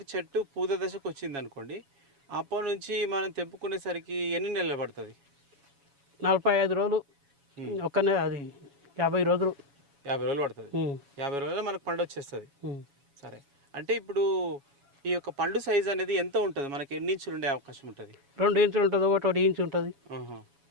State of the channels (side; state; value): left; late; 7.2 ms